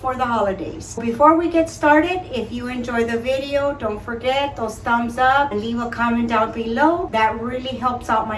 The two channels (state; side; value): identical; both; correlation 1.00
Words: the holidays. Before we get started, if you enjoy the video, don't forget those thumbs up and leave a comment down below. That really helps out